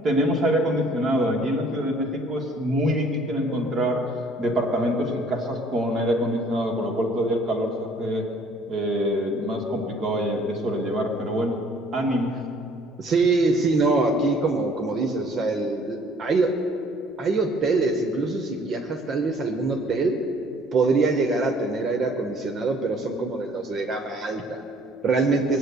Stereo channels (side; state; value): both; normal; correlation 0.57